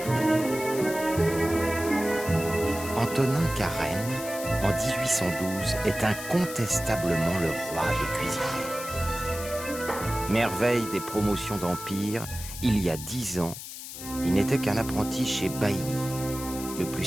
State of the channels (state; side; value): noise; left; hiss, 10 dB below the sound